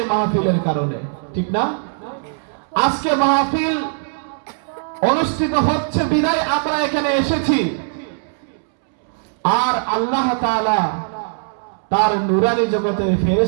মাহফিলের কারণে, ঠিক না? আজকে মাহফিল অনুষ্ঠিত হচ্ছে বিদায় আমরা এখানে এসেছি, আর আল্লাহ তাআলা তার নূরানি জগতের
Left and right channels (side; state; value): left; silent; 66 dB below the other